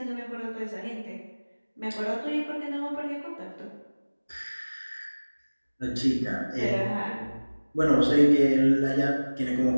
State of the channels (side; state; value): both; inverted; correlation -1.00